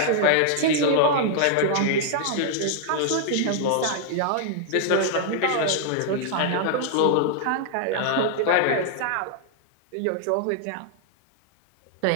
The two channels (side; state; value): both; different; correlation -0.01